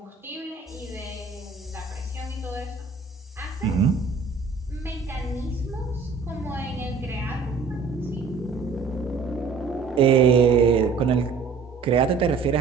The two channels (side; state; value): left; quieter; 4.9 dB